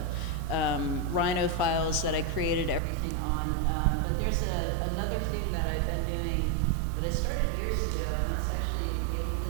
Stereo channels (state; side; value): drops out; left; at 2.8 s